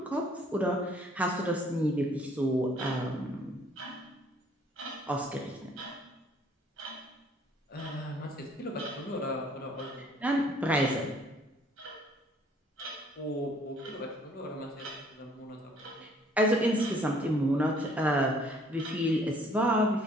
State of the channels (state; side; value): normal; both; correlation 0.60